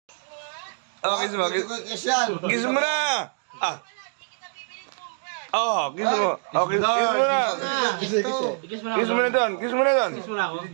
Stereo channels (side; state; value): left; silent; 58 dB below the other